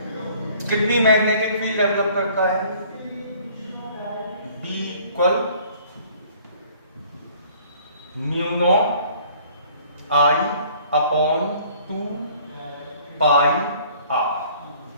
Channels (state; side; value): inverted; both; correlation -0.55